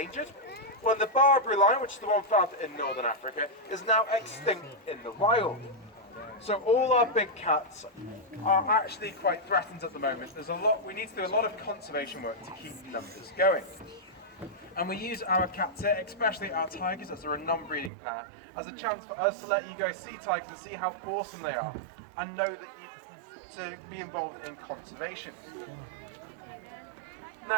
when the Barbary lion, which is the one found in northern Africa, is now extinct in the wild. So all our big cats are actually quite threatened at the moment. We need to do a lot of conservation work to keep numbers going. And we use our cats here, especially our tigers, as they're a non-breeding pair, as a chance for us to let you guys see tigers and see how awesome they are, and know that to be involved in conservation.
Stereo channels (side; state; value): left; drops out; at 17.9 s